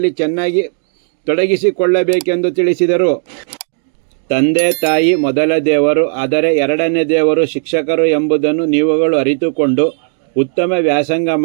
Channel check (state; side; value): silent; left; digital silence